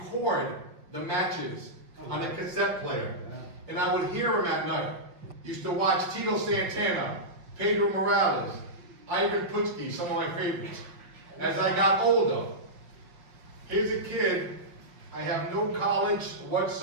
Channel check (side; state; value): left; late; 5.7 ms